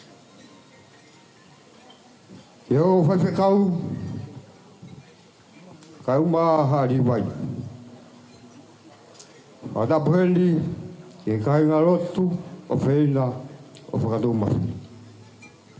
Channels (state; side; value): identical; both; correlation 1.00